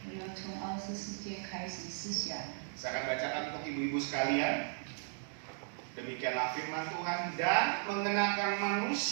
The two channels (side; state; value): left; silent; digital silence